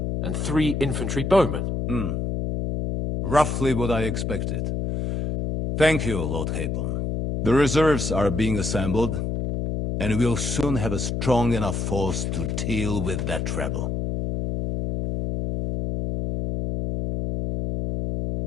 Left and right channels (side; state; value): left; noise; hum, 1 dB below the sound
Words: and 3 infantry bowmen. Roughly what I expected. Thank you, Lord Capon. The reserves are being assembled, and we'll soon have a strong enough force to deal with that rebel.